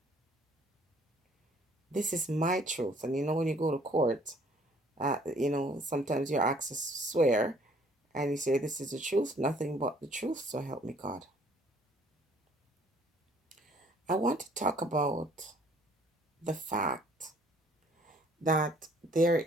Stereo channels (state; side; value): normal; both; correlation 0.59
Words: This is my truth. And when you go to court, sometimes you're asked to swear and you say, "This is the truth, nothing but the truth, so help me God." I want to talk about the fact that there